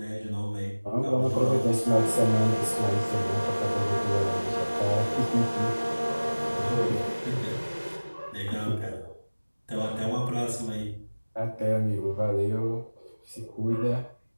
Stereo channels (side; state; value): both; inverted; correlation -1.00